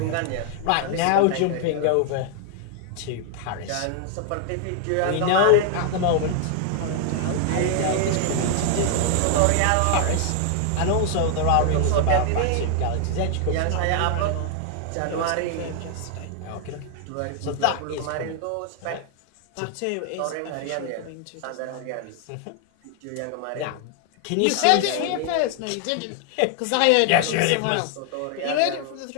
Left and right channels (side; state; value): both; different; correlation 0.00